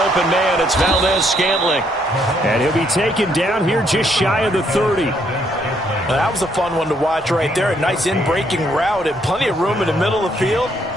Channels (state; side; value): normal; both; correlation 0.71